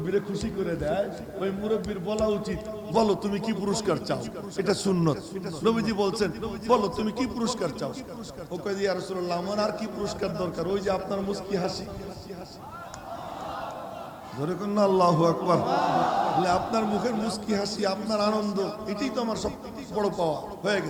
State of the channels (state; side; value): identical; both; correlation 1.00